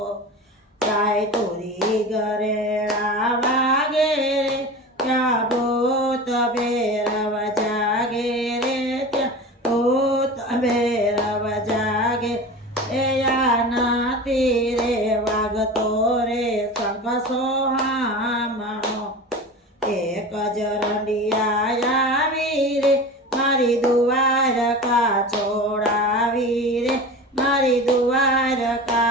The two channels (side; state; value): both; normal; correlation 0.32